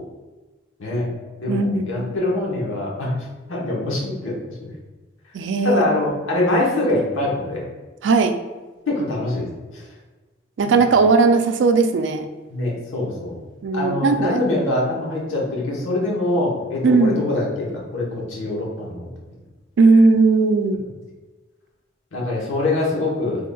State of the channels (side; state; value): both; normal; correlation 0.42